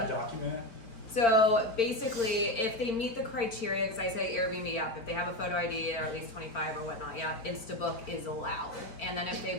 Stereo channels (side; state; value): right; late; 4.4 ms